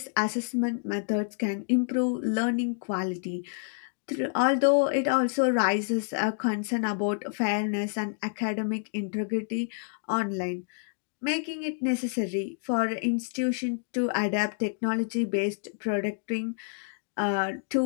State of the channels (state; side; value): silent; right; digital silence